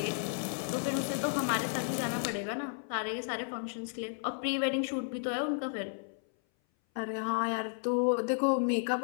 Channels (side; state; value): right; silent; 56 dB below the other